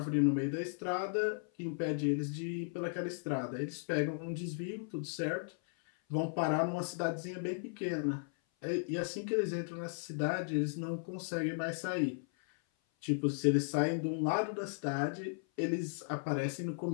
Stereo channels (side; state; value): right; silent; 54 dB below the other